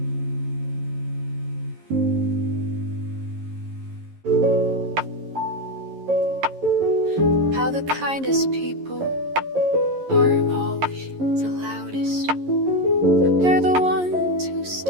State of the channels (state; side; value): late; left; 11 ms